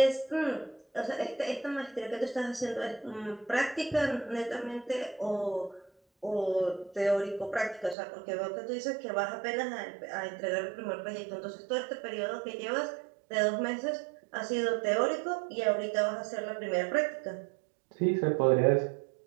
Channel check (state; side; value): drops out; left; at 8.0 s